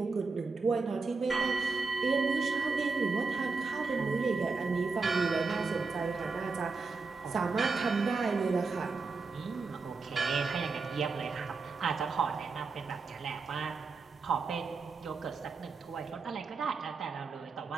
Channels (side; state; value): left; quieter; 4.3 dB